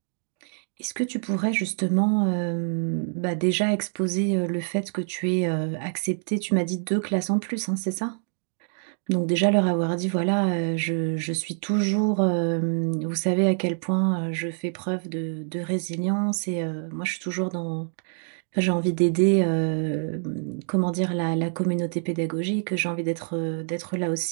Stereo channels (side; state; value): left; silent; digital silence